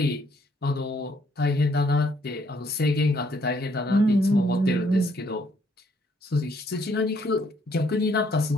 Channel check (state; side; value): normal; both; correlation 0.68